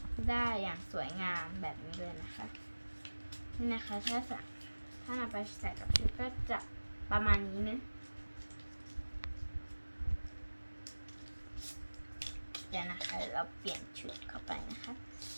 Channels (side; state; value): both; inverted; correlation -1.00